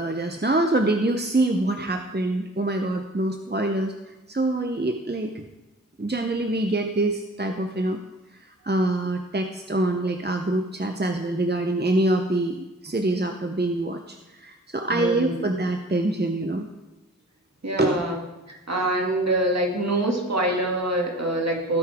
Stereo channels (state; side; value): normal; both; correlation 0.47